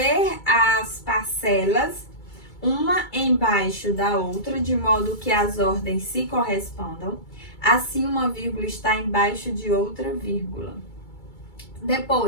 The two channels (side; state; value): right; late; 2.3 ms